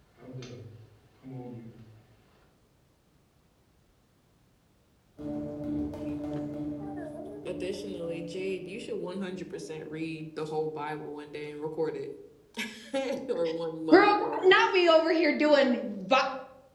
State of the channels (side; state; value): both; identical; correlation 1.00